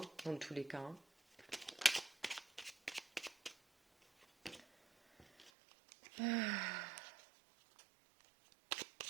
dans tous les cas, hein.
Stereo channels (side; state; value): left; drops out; at 5.5 s